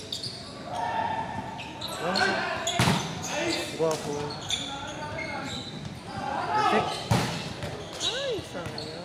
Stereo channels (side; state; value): both; identical; correlation 1.00